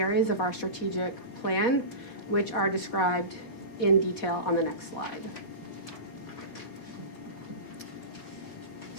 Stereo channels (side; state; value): right; late; 4.1 ms